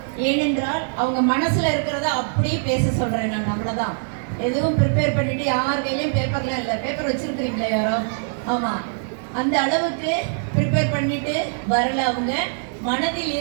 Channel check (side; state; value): left; silent; digital silence